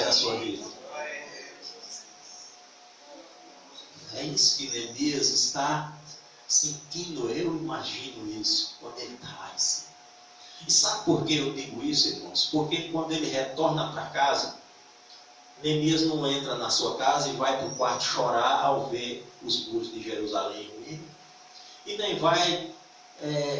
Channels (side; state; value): both; identical; correlation 1.00